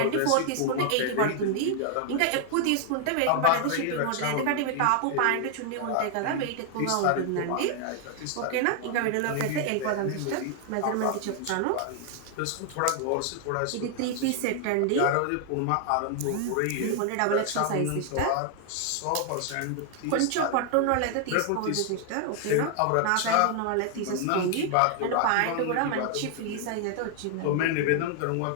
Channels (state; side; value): different; both; correlation 0.00